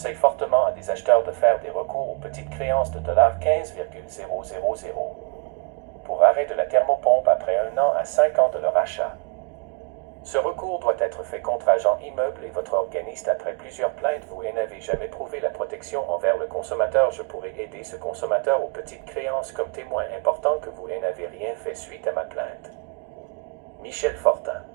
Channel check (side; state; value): left; quieter; 32.4 dB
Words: fortement à des acheteurs de faire des recours aux petites créances de 15,000 pour arrêt de la thermopompe après 1 an à 5 ans de leur achat. Ce recours doit être fait contre agent immeuble et votre organiste après plusieurs plaintes. Vous n'avez jamais prouvé la protection envers le consommateur. Je pourrais aider ce consommateur aux petites créances comme témoin important que vous n'avez rien fait suite à ma plainte. Michel Fortin.